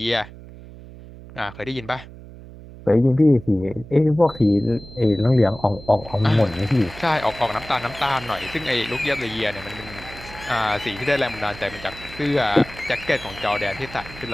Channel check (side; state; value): right; noise; hum, 17 dB below the sound